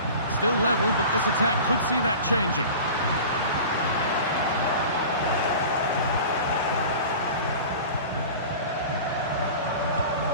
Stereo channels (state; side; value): inverted; both; correlation -0.37